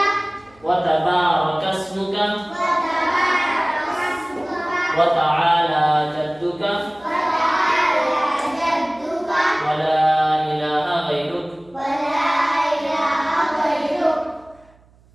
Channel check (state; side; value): noise; right; hum, 30 dB below the sound